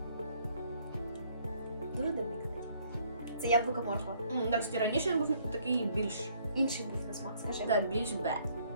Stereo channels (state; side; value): inverted; both; correlation -0.64